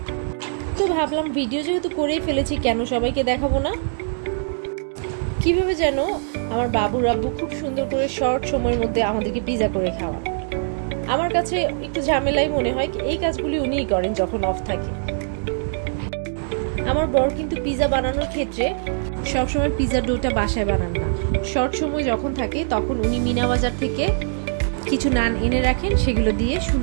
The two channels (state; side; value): silent; left; 64 dB below the other